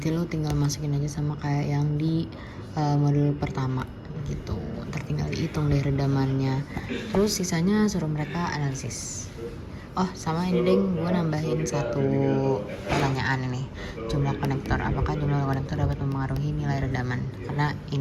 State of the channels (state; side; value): identical; both; correlation 1.00